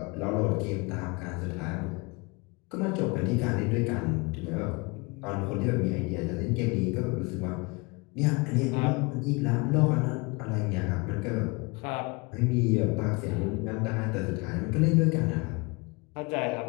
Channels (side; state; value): right; quieter; 27.7 dB